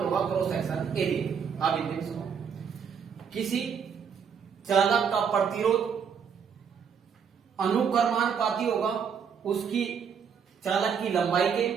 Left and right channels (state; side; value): quieter; left; 6.9 dB